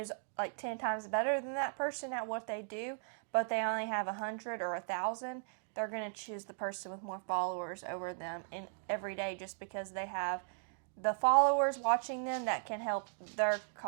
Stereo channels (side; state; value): left; silent; digital silence